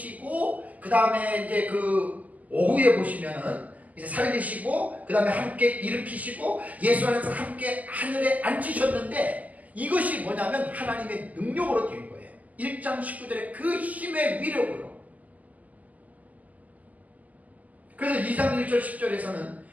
그 다음에 이제 그 오후에 보시면은 이제 살리시고 그 다음에 함께 일으키시고 예수 안에서 함께 하늘에 앉히셨는데 이것이 뭐냐면 하나님의 능력으로 된 거예요. 1장 19절에 그 힘의 위력으로. 그래서 2장 1절 10절에서는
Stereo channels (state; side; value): late; left; 0.077 ms